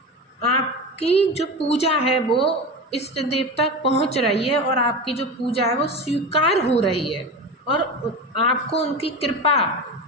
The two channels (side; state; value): both; normal; correlation 0.26